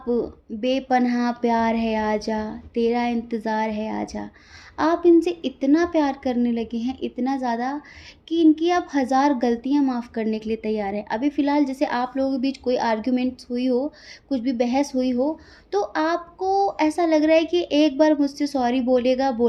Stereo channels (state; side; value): identical; both; correlation 1.00